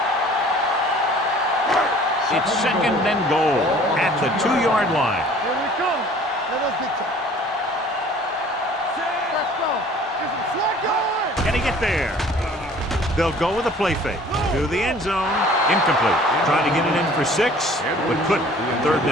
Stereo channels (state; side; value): normal; both; correlation 0.51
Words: It's second and goal at the 2-yard line. Here we come. Let us get you. Let's go. Get some slack going. Can he get there? They'll go with a play fake to the end zone. Incomplete. Trying to get it in for 6, but couldn't. Third